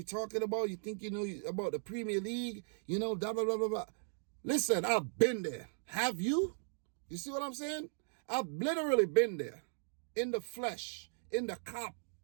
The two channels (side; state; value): left; silent; digital silence